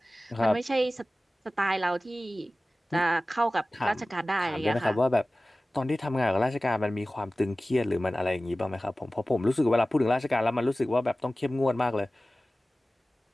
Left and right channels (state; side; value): normal; both; correlation 0.97